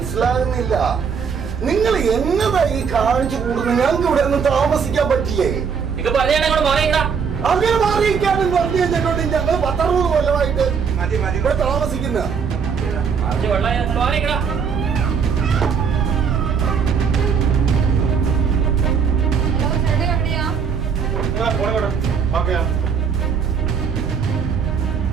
നിങ്ങൾ എന്നതാ ഈ കാണിച്ചു കൂടുന്നത്? ഞങ്ങൾക്ക് ഇവിടെ ഒന്നും താമസിക്കാൻ പറ്റില്ലേ? ഇത് പറഞ്ഞാ അങ്ങനെ മാറിയിരിക്കാനും പറഞ്ഞു കഴിഞ്ഞിട്ടുണ്ട്. ഞങ്ങൾ 10-60 കൊല്ലമായിട്ട് ഇവിടെ താമസിക്കുന്ന. ഹലോ, ചേട്ടൻ എവിടെയാ?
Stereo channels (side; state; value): left; quieter; 6.4 dB